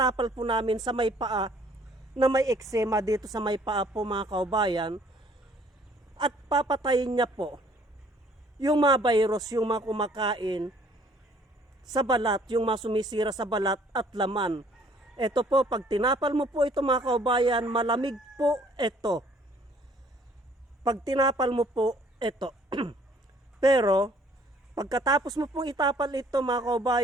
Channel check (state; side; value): normal; both; correlation 0.59